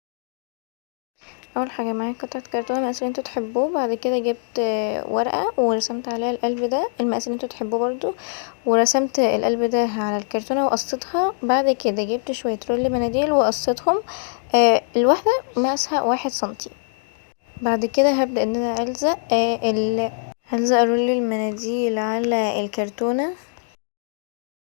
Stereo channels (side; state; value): right; silent; digital silence